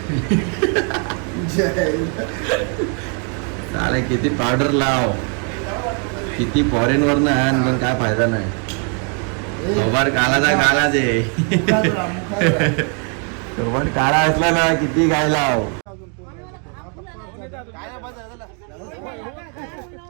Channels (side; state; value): left; quieter; 39.4 dB